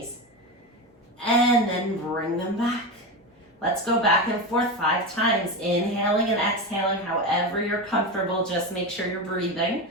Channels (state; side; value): normal; both; correlation 0.19